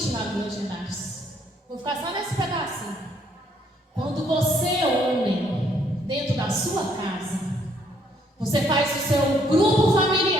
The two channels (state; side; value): normal; both; correlation 0.68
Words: lá dos Legendários. Vou ficar só nesse pedacinho. Quando você, homem, dentro da sua casa, você faz o seu grupo